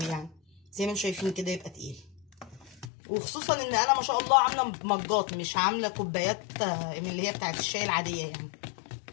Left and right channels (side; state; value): right; drops out; at 2.9 s